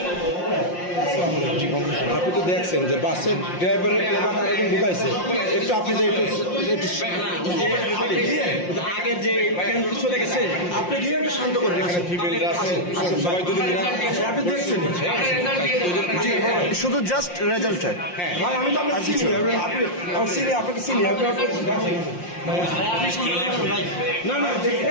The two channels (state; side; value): late; right; 5.7 ms